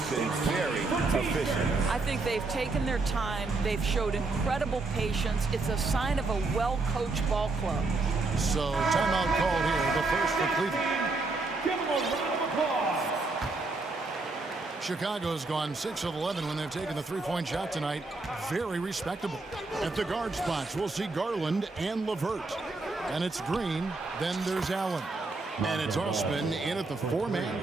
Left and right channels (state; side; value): quieter; left; 3.5 dB